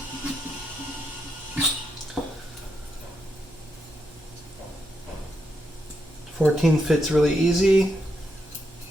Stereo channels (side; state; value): both; normal; correlation 0.82